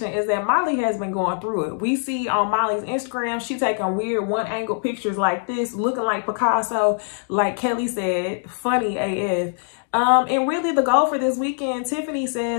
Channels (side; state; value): right; silent; digital silence